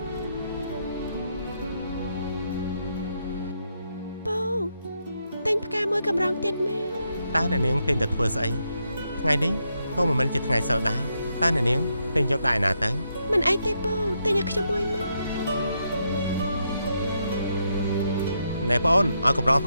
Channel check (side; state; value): both; inverted; correlation -0.80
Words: ពូតែផ្កាមួយកម្រងទៀតមកតើអ្នកនាងទិញតែធ្វើស្អីថ្ងៃនេះក៏មិនមែនជាថ្ងៃសិលដែរតើអ្នកនាងទិញយកដែរណាទៅមិនអីទេពូទិញឲ្យខ្ញុំមួយមកណែបងអូនឲ្យកម្រងផ